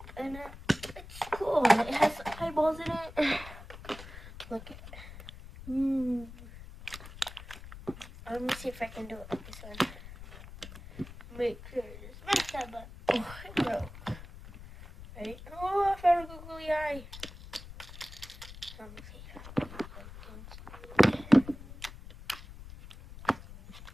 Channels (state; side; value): noise; left; rumble, 15 dB below the sound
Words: And it's cool. It has eyeballs in it. Look at it. Let me see if I can do it like this one. Make sure it's messed up, but oh, it broke. Right? Oh, I found a googly eye. Let me see.